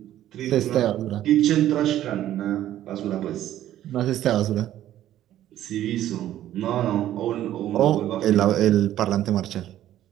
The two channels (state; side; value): quieter; left; 12.6 dB